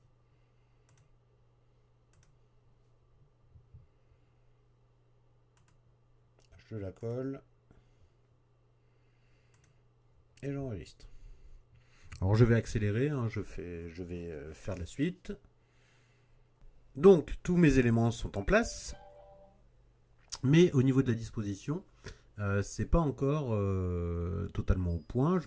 Je la colle. Et j'enregistre. Alors je vais accélérer, hein, je vais faire la suite. Donc tous mes éléments sont en place. Mais au niveau de la disposition, c'est pas encore totalement au point. Je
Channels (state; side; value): identical; both; correlation 1.00